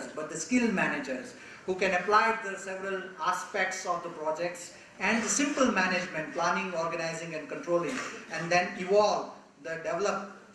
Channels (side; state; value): both; identical; correlation 1.00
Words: but the skilled managers who can apply the several aspects of the projects and the simple management, planning, organizing and controlling, and then develop